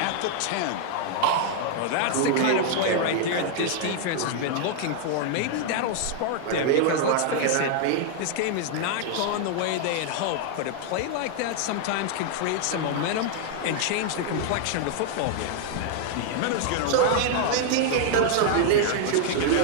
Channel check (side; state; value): both; different; correlation 0.00